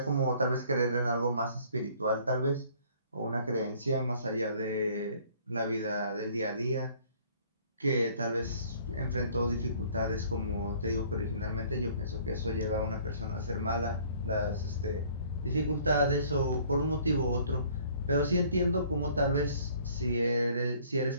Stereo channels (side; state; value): both; inverted; correlation -0.57